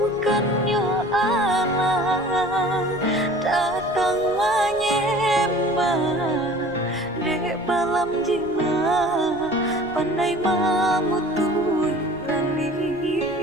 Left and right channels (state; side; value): noise; left; rumble, 20 dB below the sound